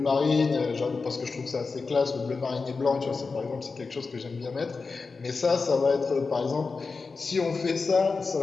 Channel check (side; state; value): right; quieter; 4.4 dB